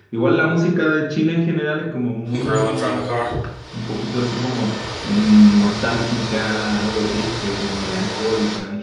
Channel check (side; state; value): both; identical; correlation 1.00